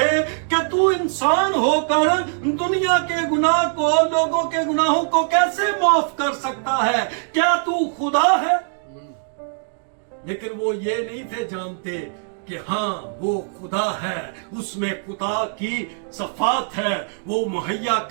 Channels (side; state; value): left; silent; digital silence